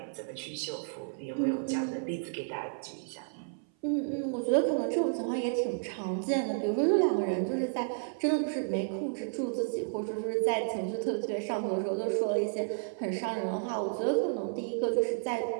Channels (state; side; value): silent; left; 57 dB below the other